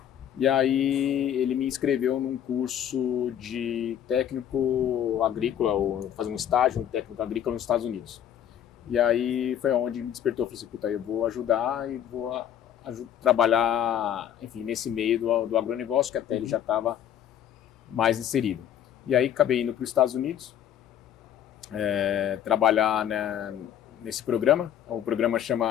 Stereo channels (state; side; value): quieter; right; 10.1 dB